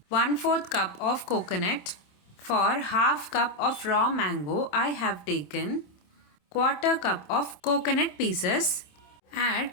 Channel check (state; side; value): late; right; 27 ms